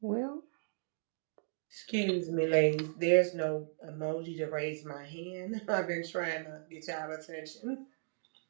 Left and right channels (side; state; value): left; silent; digital silence